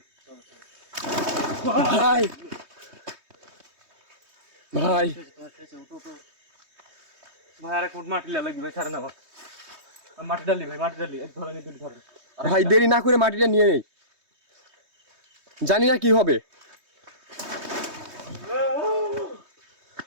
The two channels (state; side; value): late; left; 3.2 ms